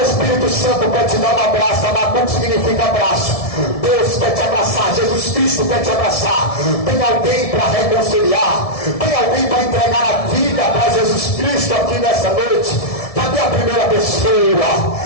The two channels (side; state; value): right; late; 1.7 ms